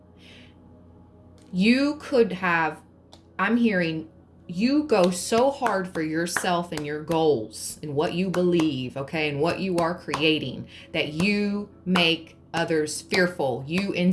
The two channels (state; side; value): identical; both; correlation 1.00